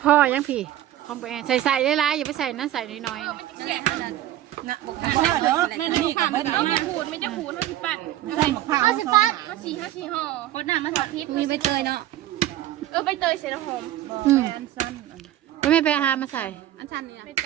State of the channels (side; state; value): left; quieter; 13.2 dB